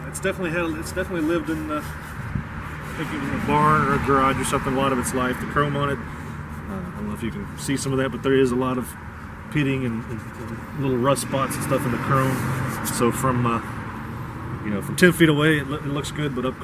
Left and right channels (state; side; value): identical; both; correlation 1.00